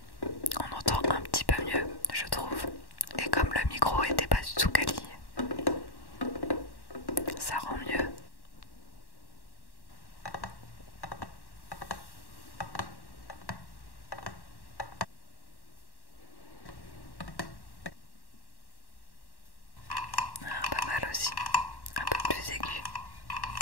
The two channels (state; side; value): late; right; 1.1 ms